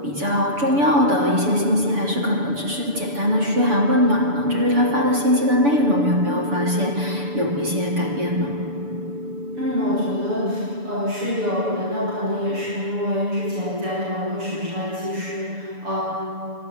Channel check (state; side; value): late; left; 7.0 ms